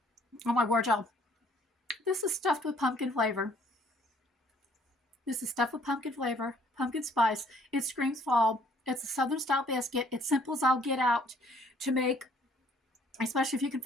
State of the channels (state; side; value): normal; both; correlation 0.61